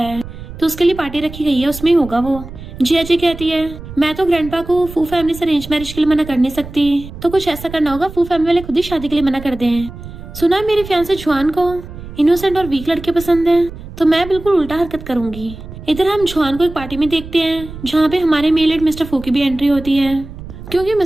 तो उसके लिए पार्टी रखी गई है, उसमें ही होगा वो। जिया जी कहती है मैं तो ग्रैंडपा को फू फैमिली से अरेंज मैरिज के लिए मना कर नहीं सकती, तो कुछ ऐसा करना होगा फू फैमिली वाले खुद ही शादी के लिए मना कर दें। सुना मेरे फियांसे जुआन को इनोसेंट और वीक लड़के पसंद है तो मैं बिल्कुल उल्टा हरकत करूंगी। इधर हम जुआन को एक पार्टी में देखते हैं जहाँ पे हमारे मेल लीड मिस्टर फू की भी एंट्री होती है, क्योंकि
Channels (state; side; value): noise; right; rumble, 13 dB below the sound